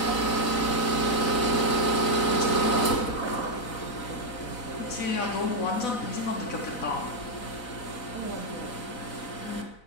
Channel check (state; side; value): late; right; 4.0 ms